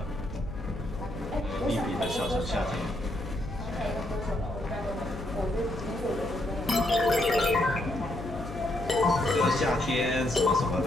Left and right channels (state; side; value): noise; left; hum, 11 dB below the sound